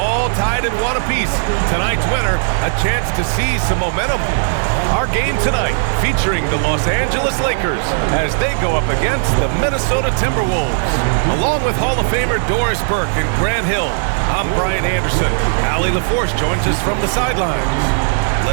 tied in one apiece. Tonight's winner, a chance to seize some momentum. Our game tonight featuring the Los Angeles Lakers as they go up against the Minnesota Timberwolves. Along with Hall of Famer Doris Burke and Grant Hill, I'm Brian Anderson. Allie LaForce joins us from the sidelines.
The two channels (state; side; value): silent; left; digital silence